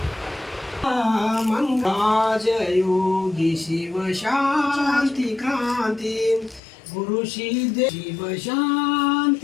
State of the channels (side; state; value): right; drops out; at 6.6 s